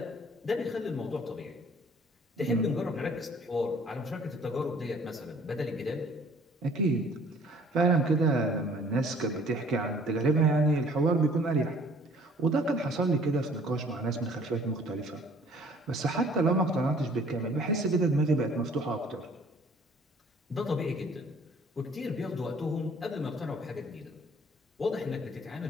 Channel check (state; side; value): normal; both; correlation 0.55